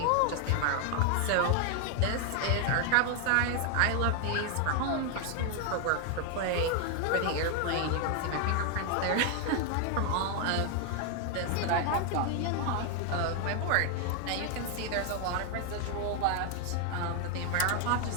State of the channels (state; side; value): different; both; correlation 0.00